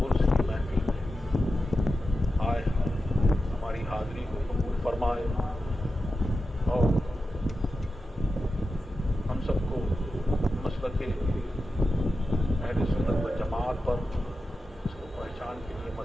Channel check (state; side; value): normal; both; correlation 0.91